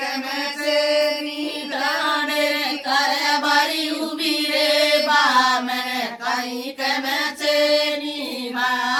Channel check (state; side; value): identical; both; correlation 1.00